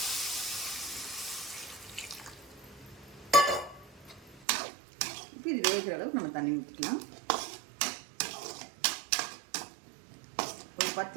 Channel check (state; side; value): drops out; left; at 4.5 s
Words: இப்போ இது வேகிற அளவுக்கு நம்ம தண்ணி ஊற்றிக்கலாம். ஒரு